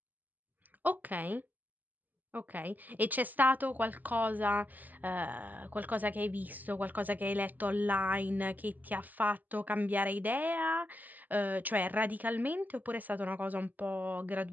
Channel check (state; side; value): late; left; 0.083 ms